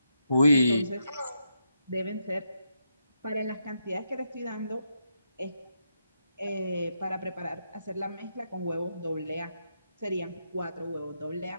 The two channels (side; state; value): both; inverted; correlation -0.82